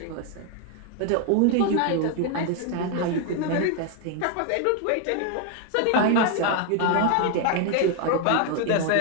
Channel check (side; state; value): both; different; correlation 0.01